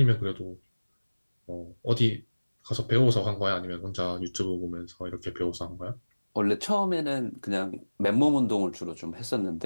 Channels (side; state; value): both; inverted; correlation -1.00